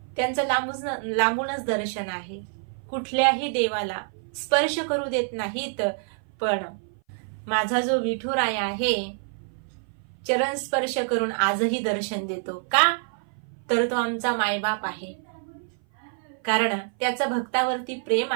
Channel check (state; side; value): silent; left; 57 dB below the other